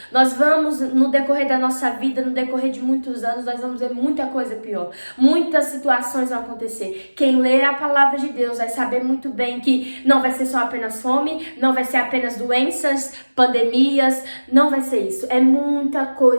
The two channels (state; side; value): inverted; both; correlation -1.00